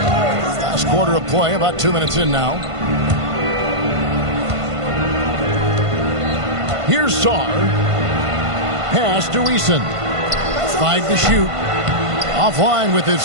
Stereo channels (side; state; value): left; late; 1.5 ms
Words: Last quarter of play, about 2 minutes in now. Here's Sarr. Pass to Eason. 5 to shoot. Offline with